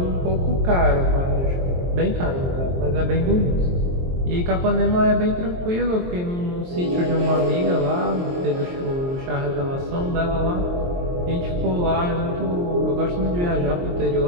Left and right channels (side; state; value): left; late; 23 ms